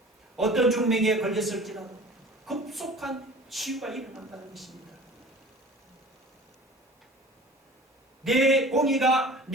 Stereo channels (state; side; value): normal; both; correlation 0.44